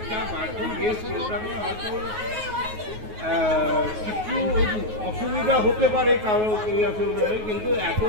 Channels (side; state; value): left; late; 9.4 ms